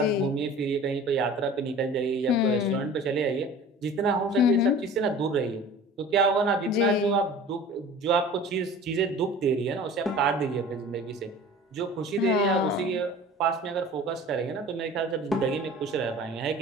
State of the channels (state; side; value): normal; both; correlation 0.41